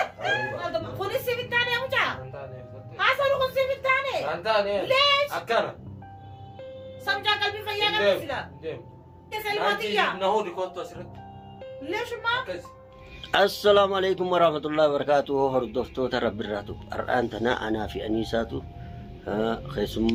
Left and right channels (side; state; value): both; identical; correlation 1.00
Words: Kunis si bittaane mucaa. Antaane. Haasawni kun si bittaane. Antaane. Lees. Akkana. Samjaa qalbii fayyaa qabsiisa. Deem. Isa ilmaatiyyaa. Nahuu dikootu asirratti. Leeshummaa. Akkasi. Assalamu alaikum warahmatullahi wabarakatuh. Hordoftoota Rabbirraatu. Har'aan tana anaa fi Aniisaatu